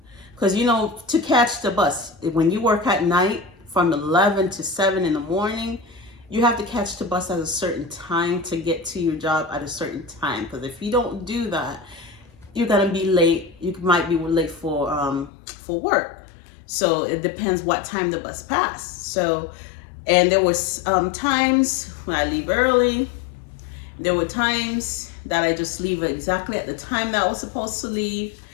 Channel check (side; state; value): right; drops out; at 15.3 s